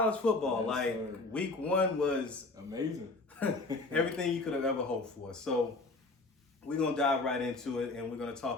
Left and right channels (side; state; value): right; quieter; 3.3 dB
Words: football. Yes, sir. Week one was Amazing. everything you could have ever hoped for. So we're going to dive right into it, and we're going to